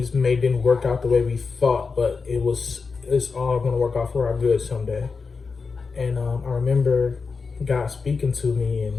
didn't work out the way we thought, but it's all going to work out for our good someday. And I remember God speaking to me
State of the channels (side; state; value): right; quieter; 4.8 dB